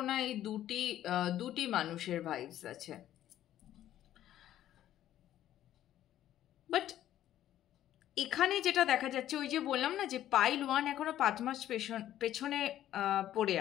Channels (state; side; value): quieter; right; 12.3 dB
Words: না এই দুটি মানুষের ভাইবস আছে। বাট এখানে যেটা দেখা যাচ্ছে, ওই যে বললাম না যে পাইল 1 এখনো 5 মাস পেছনে পড়ে